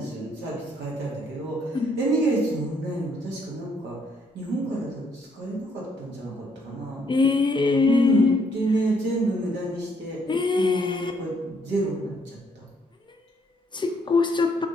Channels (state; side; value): normal; both; correlation 0.69